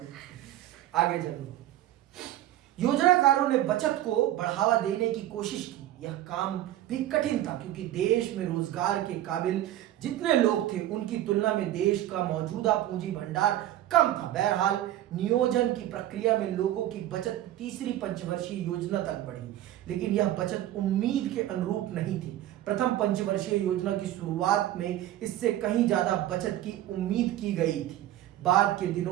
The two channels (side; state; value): left; quieter; 13.4 dB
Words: आगे चलो। योजनाकारों ने बचत को बढ़ावा देने की कोशिश की। यह काम भी कठिन था क्योंकि देश में रोजगार के काबिल जितने लोग थे उनकी तुलना में देश का मौजूदा पूंजी भंडार कम था। बहरहाल नियोजन की प्रक्रिया में लोगों की बचत तीसरी पंचवर्षीय योजना तक बढ़ी, लेकिन यह बचत उम्मीद के अनुरूप नहीं थी। प्रथम पंचवर्षीय योजना की शुरुआत में इससे कहीं ज्यादा बचत की उम्मीद की गई थी। बाद के